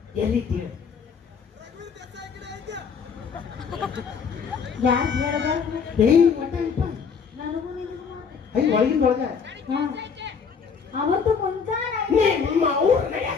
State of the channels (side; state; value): right; quieter; 6.1 dB